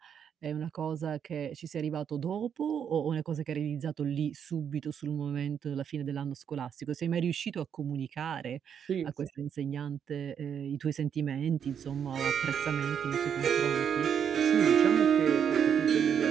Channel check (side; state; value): left; quieter; 8.1 dB